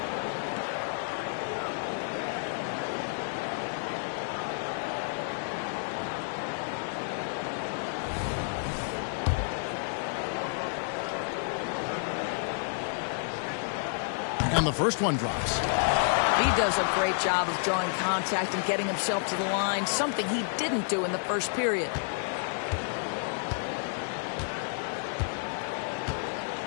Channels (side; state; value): right; silent; digital silence